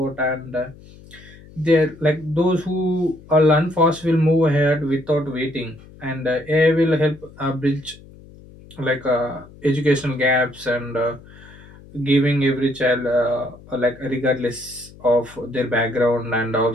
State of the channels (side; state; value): left; noise; hum, 21 dB below the sound